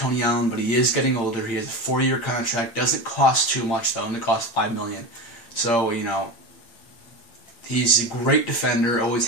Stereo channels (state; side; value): late; right; 8.7 ms